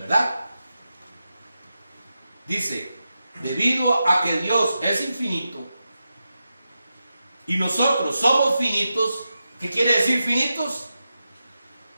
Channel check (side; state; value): both; inverted; correlation -0.90